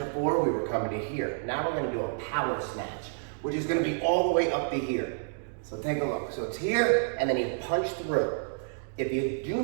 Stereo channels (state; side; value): silent; left; digital silence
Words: we were coming to here. Now we're gonna do a power snatch, which is gonna be all the way up to here. So take a look. So it's here, and then you punch through. If you do